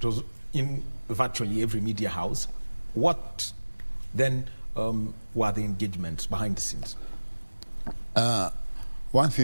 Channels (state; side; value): inverted; both; correlation -1.00